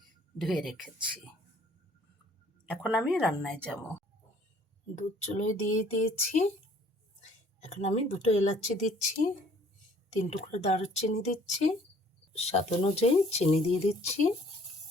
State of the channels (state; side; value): normal; both; correlation 0.57